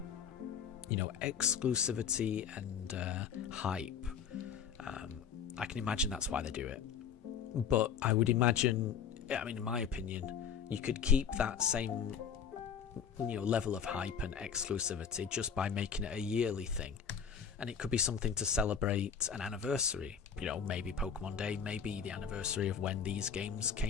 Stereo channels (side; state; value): right; quieter; 7.3 dB